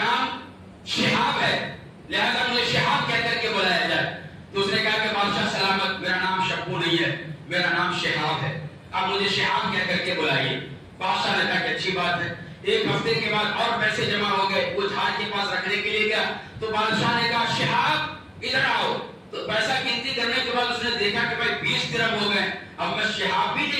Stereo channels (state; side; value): identical; both; correlation 1.00